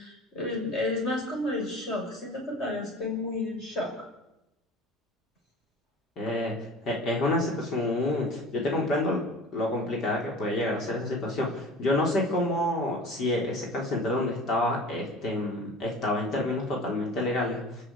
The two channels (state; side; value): normal; both; correlation 0.40